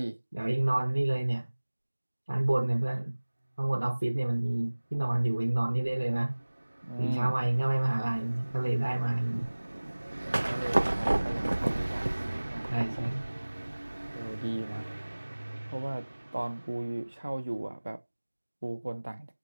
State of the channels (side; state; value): both; inverted; correlation -1.00